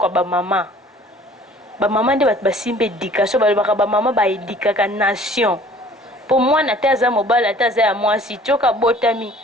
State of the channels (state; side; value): normal; both; correlation 0.51